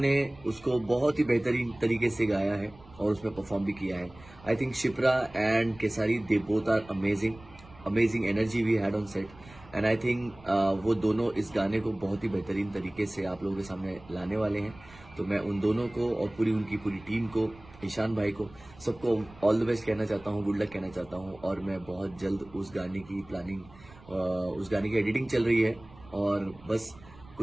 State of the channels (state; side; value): noise; right; rumble, 22 dB below the sound